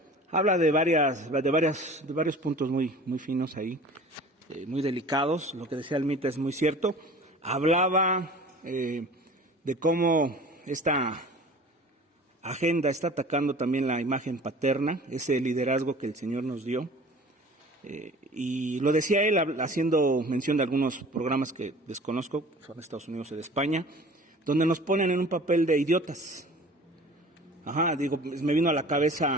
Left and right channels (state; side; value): normal; both; correlation 0.44